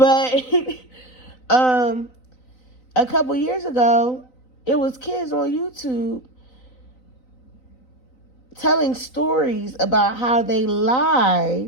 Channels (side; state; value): right; late; 3.9 ms